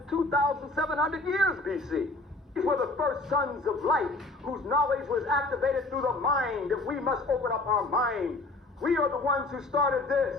2,700 years BC. These were the first sons of light, whose knowledge was activated through the mind, that we must open up our mind. We are the ones who started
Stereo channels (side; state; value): right; quieter; 3.0 dB